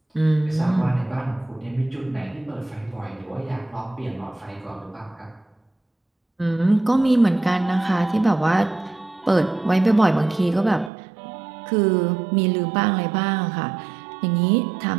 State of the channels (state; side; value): drops out; left; at 10.9 s